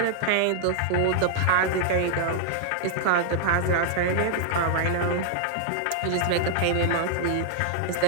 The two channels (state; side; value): different; both; correlation -0.01